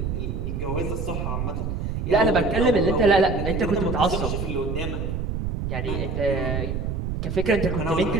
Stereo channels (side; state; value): right; noise; rumble, 3 dB below the sound